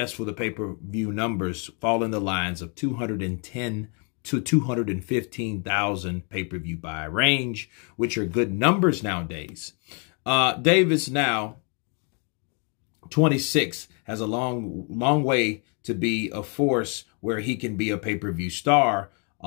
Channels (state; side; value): quieter; right; 37.2 dB